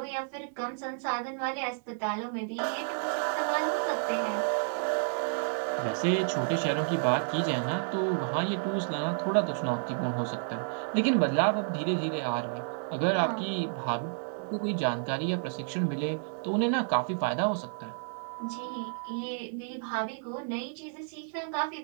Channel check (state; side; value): silent; left; digital silence